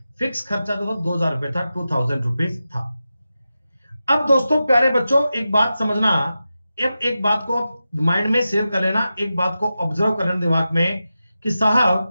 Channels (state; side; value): inverted; both; correlation -0.92